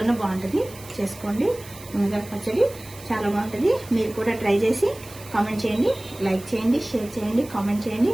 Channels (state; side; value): noise; right; hiss, 18 dB below the sound